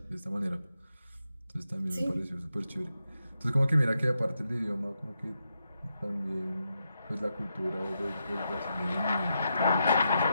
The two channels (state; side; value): inverted; both; correlation -0.84